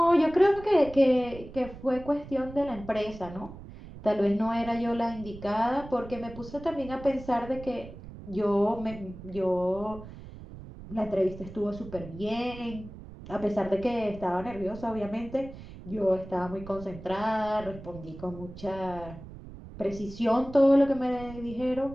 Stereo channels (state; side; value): noise; right; rumble, 14 dB below the sound